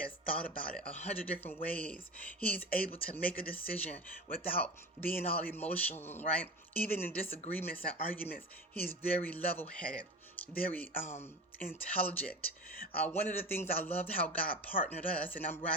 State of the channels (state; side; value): normal; both; correlation 0.31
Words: thought about it 100 different ways. He's able to make a decision without being all emotional, right? Even in disagreements and arguments, he's very level-headed, very intelligent. One of the things I loved how God partnered us, and I'm